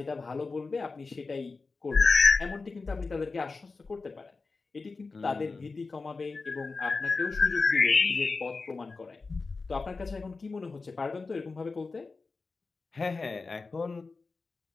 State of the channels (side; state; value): right; quieter; 4.1 dB